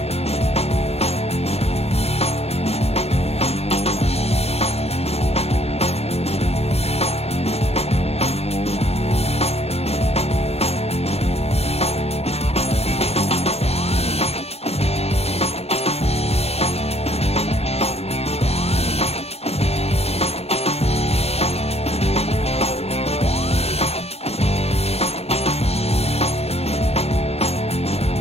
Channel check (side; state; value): right; late; 0.30 ms